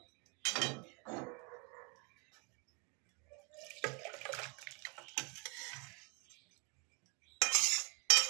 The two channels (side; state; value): left; quieter; 32.6 dB